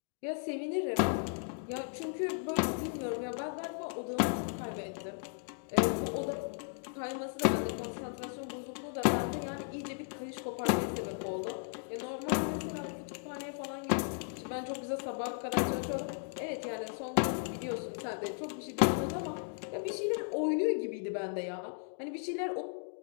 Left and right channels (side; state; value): right; silent; 54 dB below the other